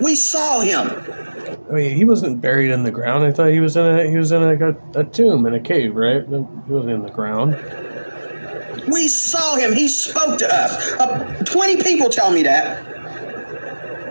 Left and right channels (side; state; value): both; inverted; correlation -1.00